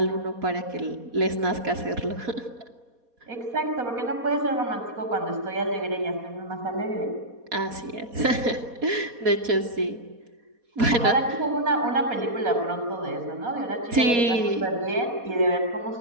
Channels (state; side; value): late; left; 4.2 ms